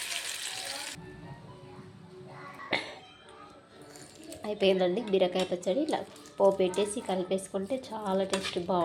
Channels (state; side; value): identical; both; correlation 1.00